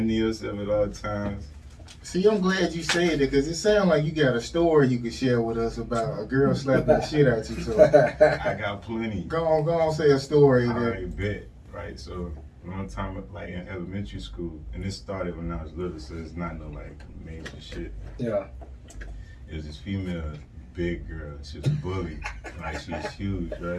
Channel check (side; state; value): both; identical; correlation 1.00